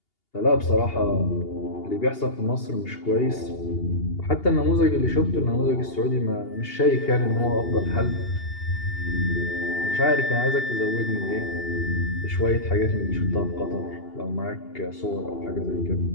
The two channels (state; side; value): late; right; 2.8 ms